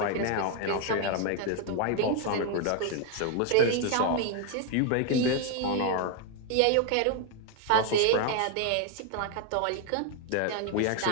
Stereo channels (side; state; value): both; different; correlation 0.01